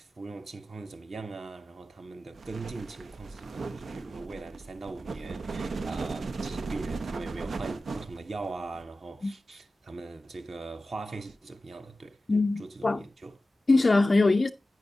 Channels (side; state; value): both; normal; correlation 0.95